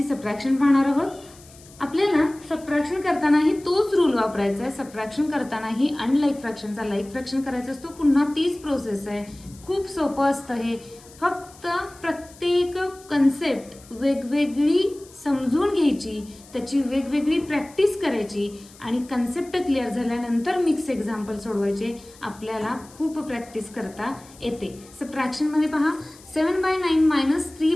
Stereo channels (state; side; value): noise; left; hiss, 23 dB below the sound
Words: सबट्रॅक्शन पाहणार आहोत. आपल्याला सबट्रॅक्शन करतानाही तोच रूल वापरायचा आहे. सबट्रॅक्शन करतानाही अनलाईक फ्रॅक्शनचा लाईक फ्रॅक्शन करायचा असतो. पुन्हा तीच प्रोसेस आहे. खूप सोपं असतं हे. फक्त प्रत्येक कन्सेप्ट वेगवेगळी समजून घ्यायची, त्याची वेगवेगळी प्रॅक्टिस करायची आणि कन्सेप्ट क्लिअर झाल्यानंतर मिक्स एक्झाम्पल सोडवायचे. आपल्याला खूप प्रॅक्टिस करता येते. सबट्रॅक्शनमध्ये पहा, 7/9 -